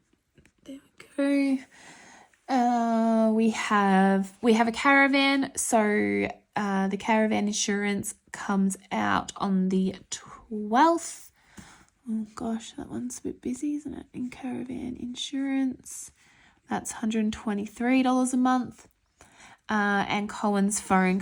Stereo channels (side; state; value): both; identical; correlation 1.00